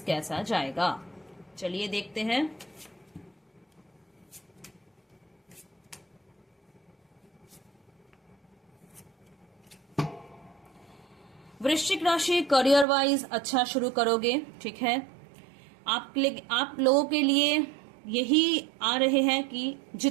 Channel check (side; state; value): left; drops out; at 12.9 s